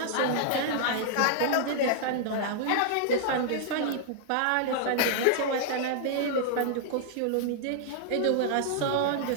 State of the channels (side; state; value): both; different; correlation -0.01